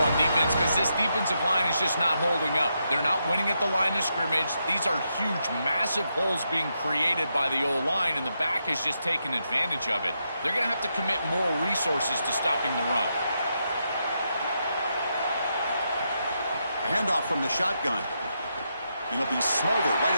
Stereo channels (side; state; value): both; inverted; correlation -0.82